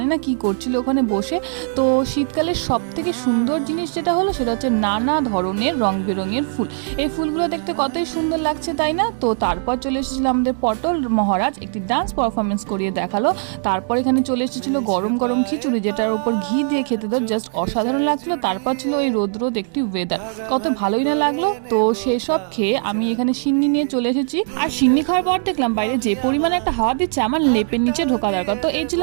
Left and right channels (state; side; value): silent; left; digital silence